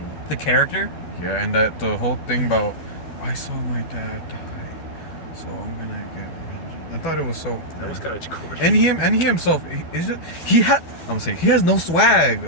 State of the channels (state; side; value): late; right; 12 ms